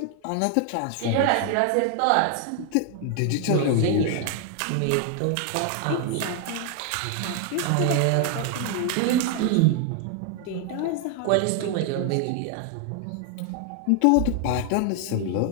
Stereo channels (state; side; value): different; both; correlation 0.00